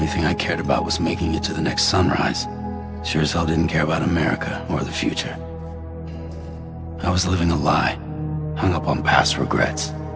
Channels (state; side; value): identical; both; correlation 1.00